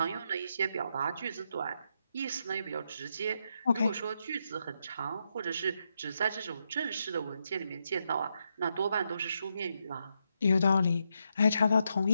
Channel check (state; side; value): inverted; both; correlation -0.81